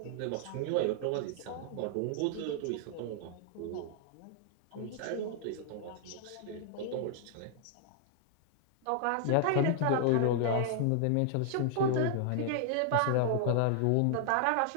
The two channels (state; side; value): different; both; correlation 0.00